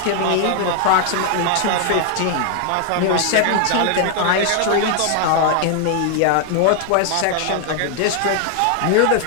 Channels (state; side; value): different; both; correlation 0.00